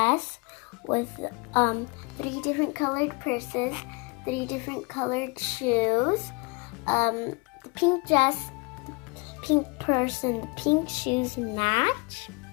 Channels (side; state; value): right; quieter; 29.3 dB